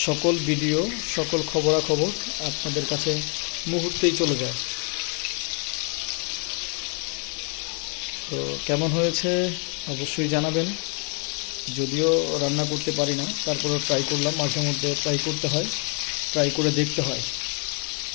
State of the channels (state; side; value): quieter; right; 39.0 dB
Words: সকল ভিডিও, সকল খবরাখবর আপনাদের কাছে মুহূর্তেই চলে যায়। তো কেমন হয়েছে অবশ্যই জানাবেন। যদিও রান্না করতে পারি না, তারপরেও ট্রাই করলাম। মাঝে মধ্যে ট্রাই করতে হয়, ট্রাই করে দেখতে হয়।